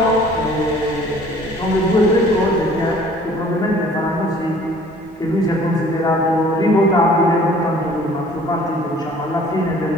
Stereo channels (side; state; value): both; normal; correlation 0.53